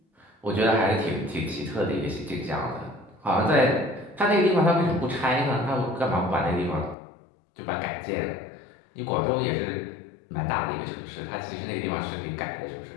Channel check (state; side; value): drops out; right; at 7.0 s